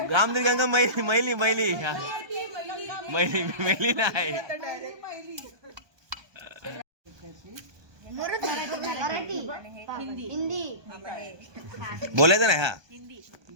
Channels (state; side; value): late; left; 1.2 ms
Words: राम तेरी गंगा मैली मैली मैली हा. मैली नाही मराठी हिंदी बोलायचं नाही हा